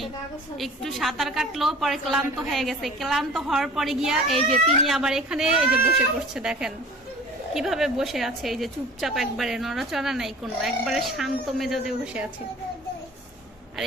একটু সাঁতার কাটলো, পরে ক্লান্ত হয়ে গেছে। ক্লান্ত হওয়ার পরে গিয়া এই যে তিনি আবার এখানে এই যে বসে পড়ছে। দেখেন কিভাবে বসে আছে, এই যে চুপচাপ, একবারে নড়াচড়া নাই কোনো, একবারে শান্ত মেজাজে বসে আছে। আর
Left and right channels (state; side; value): normal; both; correlation 0.44